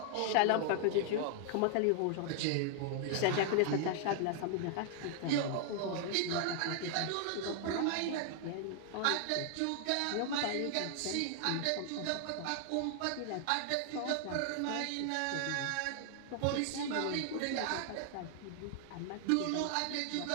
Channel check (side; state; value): both; different; correlation -0.01